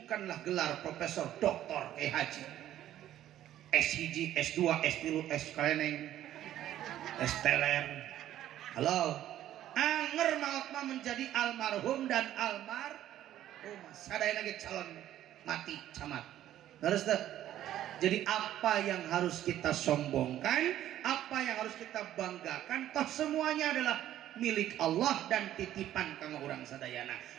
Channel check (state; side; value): quieter; left; 12.4 dB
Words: gelar profesor, doktor, haji, S1, S2, S3, S keleneng, S teler. Halo, anger maut mah menjadi almarhum dan almarhumah. Sadayana ge calon mati camat. Terus teh. Jadi apa yang harus kita sombongkan, apa yang harus kita banggakan, toh semuanya adalah milik Allah dan titipan kanggo urang sadayana.